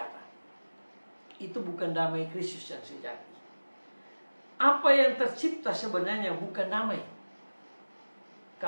Itu bukan damai Kristus yang sejati. Apa yang tercipta sebenarnya bukan damai.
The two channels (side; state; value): both; inverted; correlation -1.00